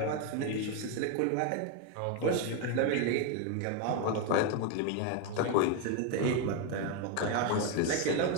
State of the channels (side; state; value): both; different; correlation 0.02